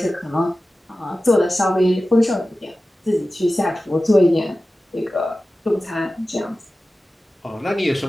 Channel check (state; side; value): normal; both; correlation 0.95